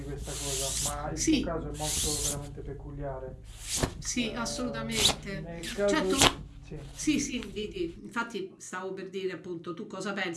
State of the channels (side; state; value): both; identical; correlation 1.00